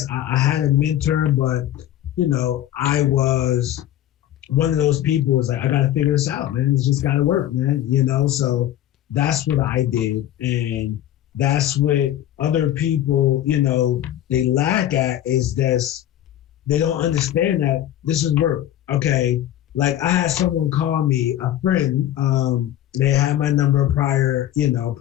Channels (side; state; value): right; quieter; 12.3 dB